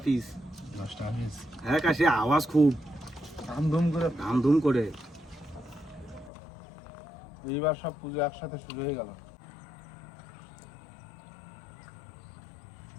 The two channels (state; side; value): drops out; right; at 6.3 s